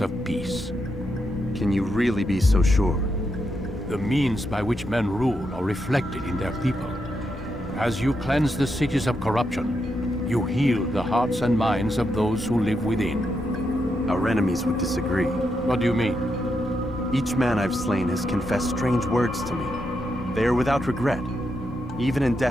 of peace. Can you really be so sure? The means by which men rule are reflected in their people. As you cleanse the cities of corruption, you heal the hearts and minds of those who live within. Our enemies would disagree. What do you mean? Each man I've slain has confessed strange words to me. They are without regret. Even in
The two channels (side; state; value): both; normal; correlation 0.83